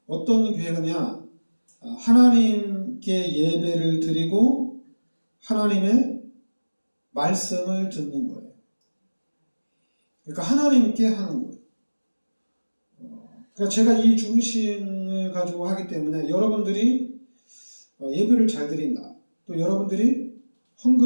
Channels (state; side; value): inverted; both; correlation -1.00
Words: 어떤 교회냐, 하나님께 예배를 드리고 하나님의 말씀을 듣는 거예요. 그러니까 하나님께 하는 거예요. 그러니까 제가 이 중심을 가지고 하기 때문에 여러분들이 예배를 잘 드린다. 또 여러분들이